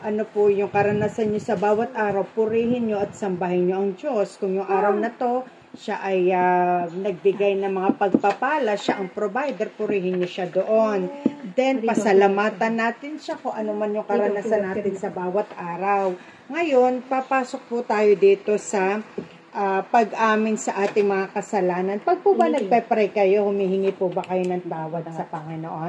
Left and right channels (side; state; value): both; identical; correlation 1.00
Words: ano po yung karanasan niyo sa bawat araw, purihin niyo at sambahin niyo ang Diyos. Kung yung araw na to, siya ay nagbigay ng mga pagpapala, siya ang provider, purihin niyo siya doon. Then, pasalamatan natin siya kung ano man yung karanasan natin sa bawat araw. Ngayon, papasok po tayo dito sa pag-amin sa ating mga kasalanan. Pag po ba nagpe-pray kayo, humihingi po ba kayo ng tawad sa